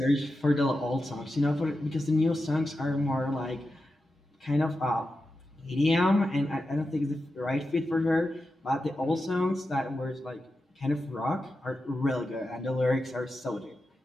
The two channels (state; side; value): normal; both; correlation 0.90